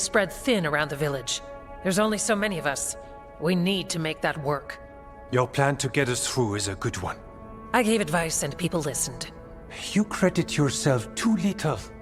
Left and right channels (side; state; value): both; identical; correlation 1.00